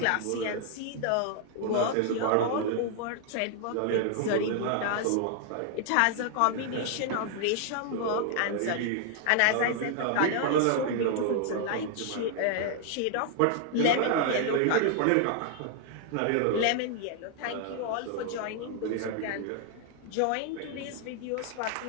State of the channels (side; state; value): both; different; correlation 0.00